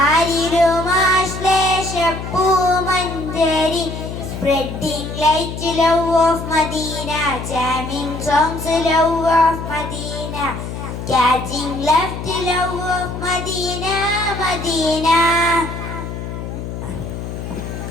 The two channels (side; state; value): left; noise; hum, 7 dB below the sound